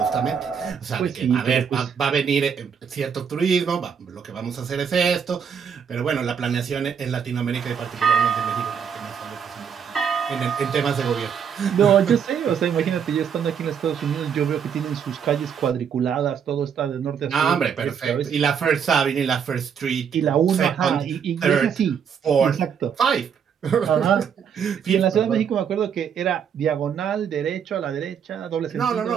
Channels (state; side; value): quieter; left; 7.4 dB